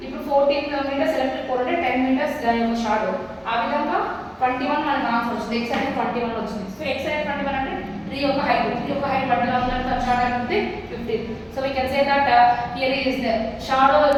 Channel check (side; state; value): both; identical; correlation 1.00